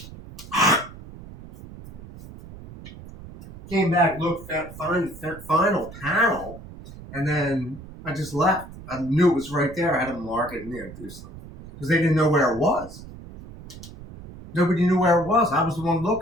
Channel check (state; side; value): noise; right; rumble, 16 dB below the sound